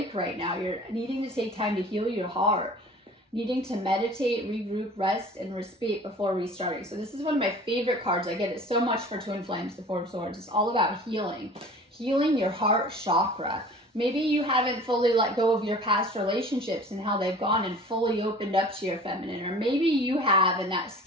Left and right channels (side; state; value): both; normal; correlation 0.44